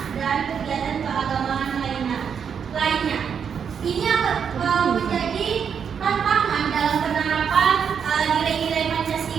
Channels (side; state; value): left; quieter; 7.2 dB